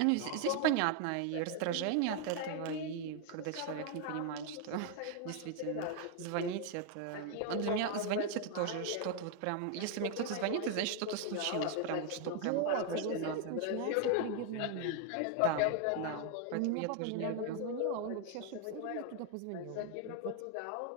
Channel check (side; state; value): both; different; correlation 0.00